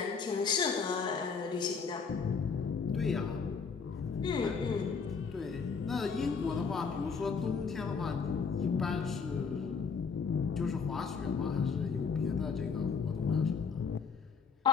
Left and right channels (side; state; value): right; quieter; 5.5 dB